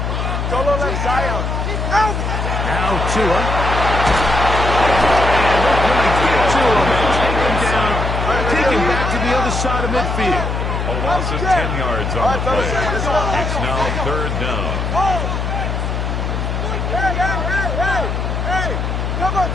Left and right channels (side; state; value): left; noise; hum, 2 dB below the sound